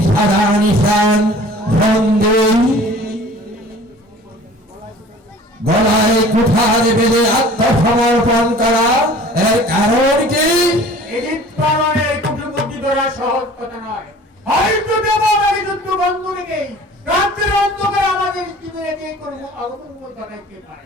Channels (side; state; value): both; normal; correlation 0.47